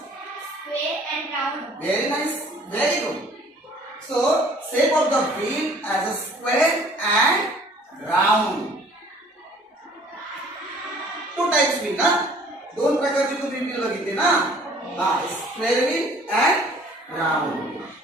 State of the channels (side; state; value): both; normal; correlation 0.53